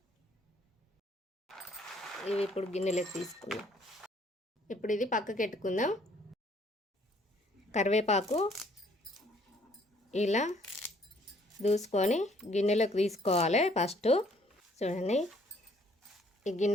ఇవి ఇప్పుడు గిన్నెలోకి తీసుకుందాం. ఇప్పుడు ఇది పక్కకి పెట్టుకుందాం. కరివేపాకు ఇలా దూసుకొని గిన్నెలోకి తీసుకోవాలి. ఫస్ట్ చూడండి, ఈ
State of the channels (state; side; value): normal; both; correlation 0.62